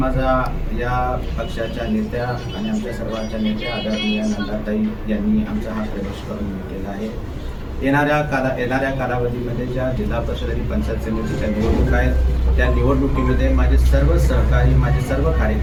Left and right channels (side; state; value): both; identical; correlation 1.00